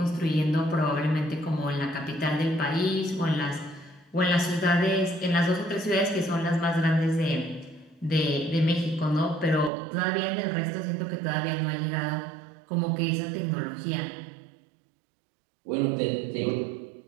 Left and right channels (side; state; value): left; drops out; at 9.7 s